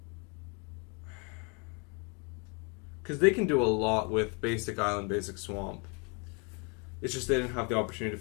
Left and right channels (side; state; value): right; quieter; 33.7 dB